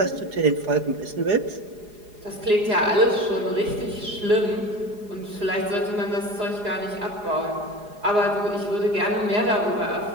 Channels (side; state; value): left; late; 4.8 ms